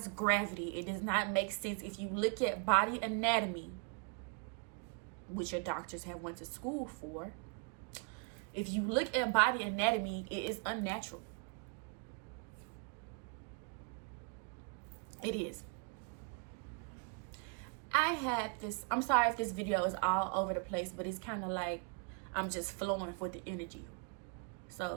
gravity. It does not make sense. If you look at body anatomy, which your doctors have went to school for, if you look at body anatomy, it is unnatural. It is. I had this, I'm sorry if this video is all over the place, but it's kind of like I'm just flowing with the energy.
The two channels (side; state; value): left; quieter; 33.1 dB